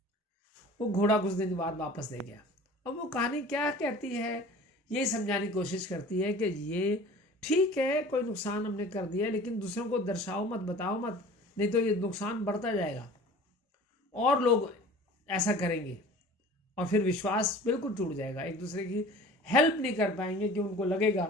वो घोड़ा कुछ दिन बाद वापस दे गया। अब वो कहानी क्या कहती है, ये समझाने की कोशिश करती है कि ये ठीक है, कोई नुकसान हमने कर दिया, लेकिन दूसरों को दर्शाओ मत, बताओ मत, नहीं तो ये नुकसान बढ़ता जाएगा और लोग ऐसा करेंगे और फिर विश्वास बिल्कुल टूट जाएगा। एक दूसरे की हेल्प नहीं कर पाएंगे कि उनको लगेगा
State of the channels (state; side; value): normal; both; correlation 0.44